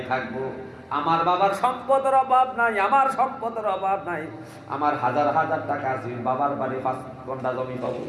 থাকবো। আমার বাবার সম্পদের অভাব নাই, আমার সম্পদের অভাব নাই, আমার হাজার হাজার টাকা আছে, বাবার বাড়ি 5 ঘন্টা জমি পাবো,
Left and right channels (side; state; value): both; identical; correlation 1.00